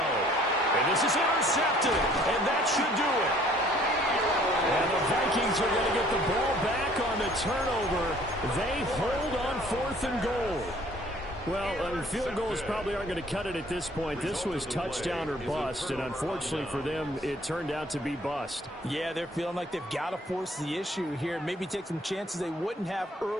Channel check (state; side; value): normal; both; correlation 0.57